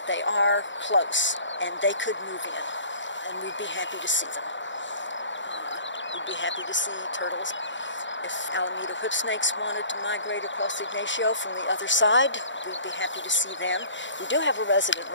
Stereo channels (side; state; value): right; late; 0.54 ms